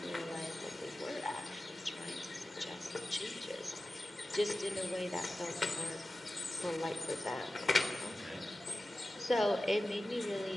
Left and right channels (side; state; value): both; normal; correlation 0.95